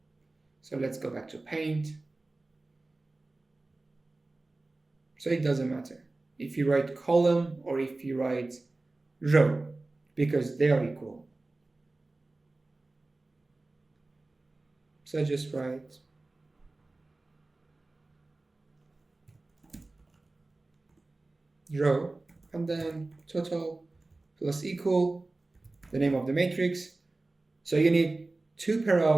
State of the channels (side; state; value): left; quieter; 3.1 dB